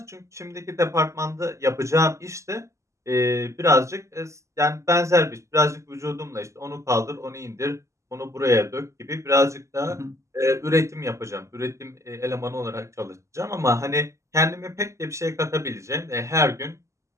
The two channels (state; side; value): late; left; 0.14 ms